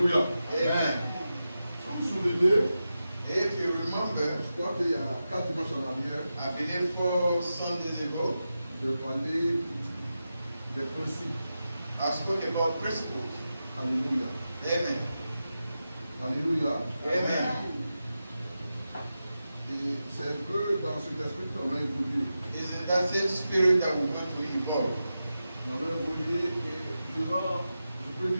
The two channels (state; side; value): inverted; both; correlation -0.91